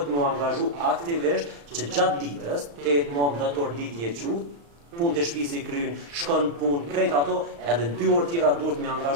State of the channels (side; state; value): left; late; 35 ms